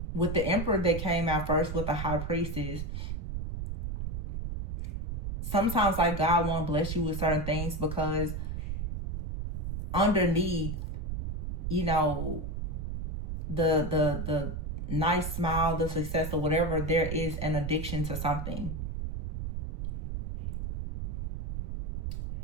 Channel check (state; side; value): noise; right; rumble, 3 dB below the sound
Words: with the Emperor that came out first with the High Priestess, sometimes like God won't bless you with certain things because underneath, you know, the nice smile, the success or whatever, there is an addiction to something.